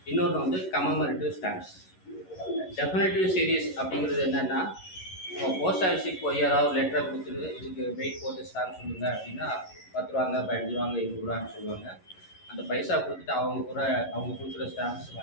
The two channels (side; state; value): right; late; 11 ms